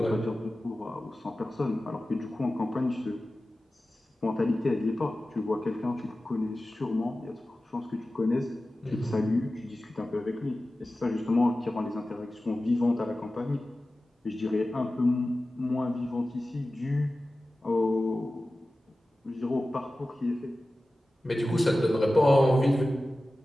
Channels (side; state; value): both; normal; correlation 0.95